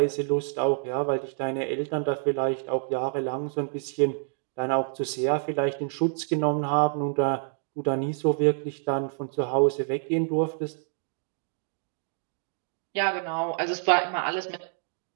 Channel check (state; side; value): silent; left; 57 dB below the other